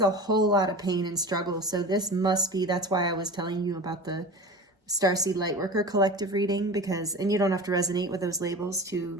a whole lot of pain and struggle. So this must be, that's why I was telling you about the Starseed Lightworker collective reading, because, and you don't have to resonate with those labels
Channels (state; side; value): normal; both; correlation 0.33